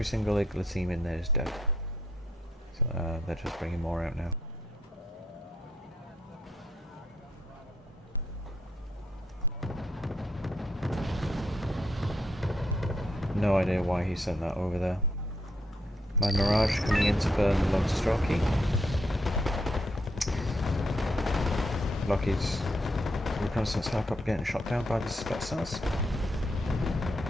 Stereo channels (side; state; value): both; normal; correlation 0.76